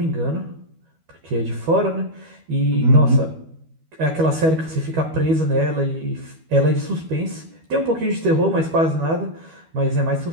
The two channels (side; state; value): left; late; 12 ms